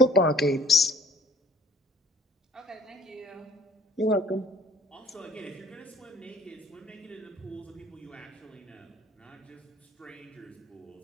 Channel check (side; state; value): both; normal; correlation 0.53